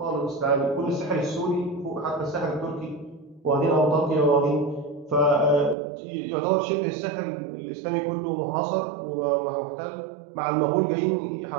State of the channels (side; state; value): left; drops out; at 5.8 s